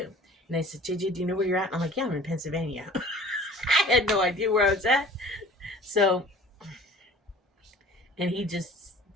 And they said, JJ, do you know where you're at? And I'm like, yeah, I'm in Pennsylvania. I had no idea where I was at. So, and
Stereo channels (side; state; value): both; normal; correlation 0.46